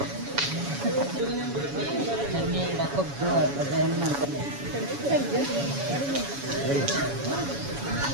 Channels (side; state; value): left; late; 7.1 ms